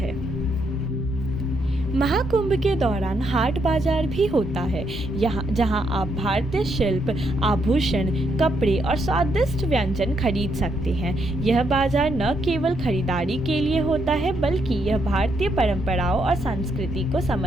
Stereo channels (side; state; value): both; normal; correlation 0.76